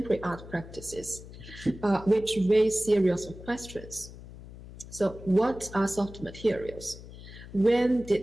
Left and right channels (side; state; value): left; noise; hum, 15 dB below the sound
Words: art practices, which raise series of questions. So what are soft materials? When